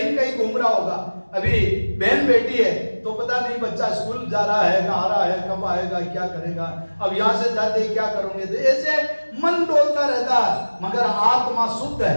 कहीं घूम रहा होगा। अभी बहन बेटी है तो पता नहीं बच्चा स्कूल जा रहा है, आ रहा है, कब आएगा, क्या करेगा, अब यहाँ से जाते क्या करोगे। तो ऐसे मन डोलता रहता है, मगर आत्मा शुद्ध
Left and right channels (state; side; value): inverted; both; correlation -1.00